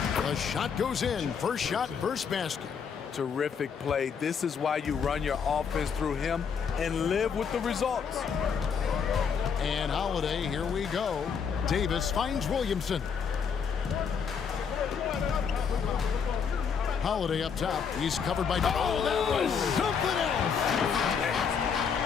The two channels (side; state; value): right; quieter; 6.6 dB